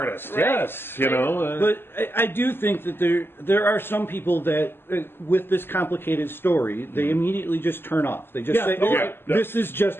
Right. Yes, But I do think that there are some people that, with this complicated story, they immediately just turn off. They just say, this is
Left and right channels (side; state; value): right; late; 0.11 ms